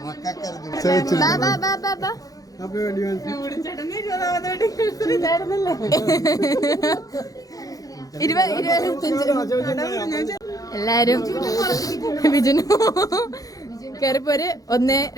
എല്ലാരും ബിജുനു കേറിപ്പോര്. 1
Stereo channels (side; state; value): right; late; 0.17 ms